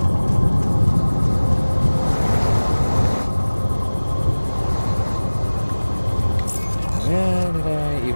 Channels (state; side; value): inverted; both; correlation -1.00